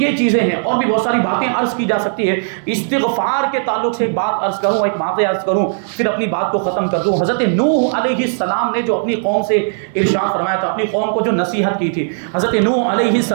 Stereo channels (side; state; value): left; silent; 61 dB below the other